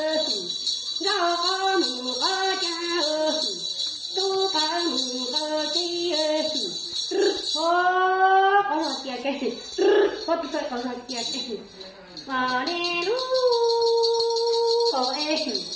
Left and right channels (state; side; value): identical; both; correlation 1.00